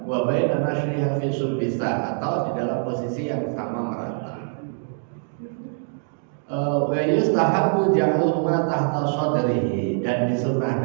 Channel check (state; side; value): silent; left; 63 dB below the other